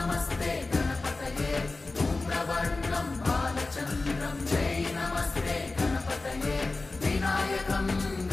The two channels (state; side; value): quieter; right; 3.4 dB